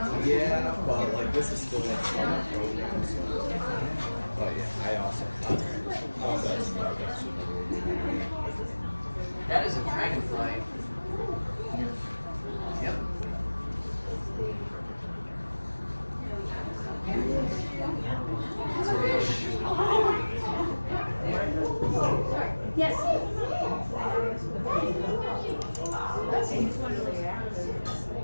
Yeah, but like this is still like on the program, so. But yeah, I also That is a dragonfly. Yep. Yes.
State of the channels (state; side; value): inverted; both; correlation -1.00